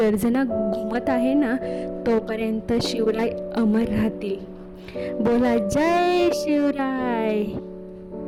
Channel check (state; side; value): identical; both; correlation 1.00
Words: घुमत आहे ना, तोपर्यंत शिवराय अमर राहतील. बोला जय शिवराय.